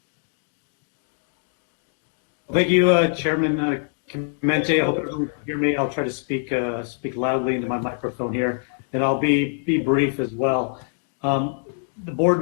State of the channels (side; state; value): right; silent; 63 dB below the other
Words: Thank you, Chairman Clemente. I hope everyone can hear me. I'll try to speak loudly into my microphone here, and I'll be brief as well. The board